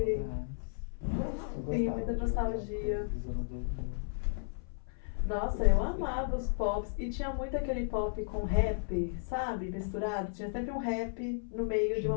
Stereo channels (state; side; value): silent; right; 55 dB below the other